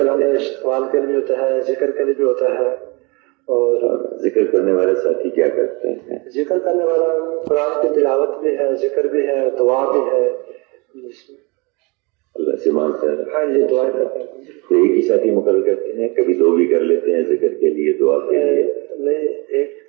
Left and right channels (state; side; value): quieter; left; 28.1 dB